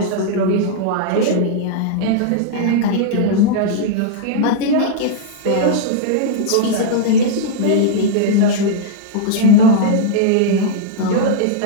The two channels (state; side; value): different; both; correlation -0.02